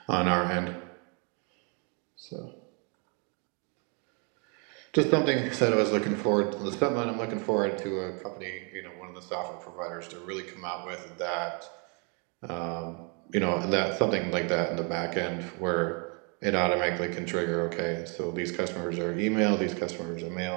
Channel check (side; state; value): left; quieter; 35.3 dB